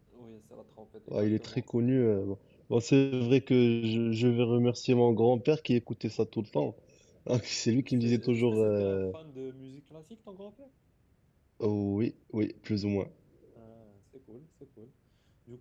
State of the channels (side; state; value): both; identical; correlation 1.00